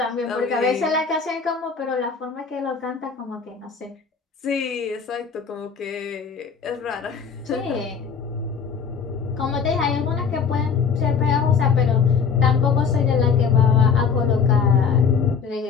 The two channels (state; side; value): quieter; right; 6.0 dB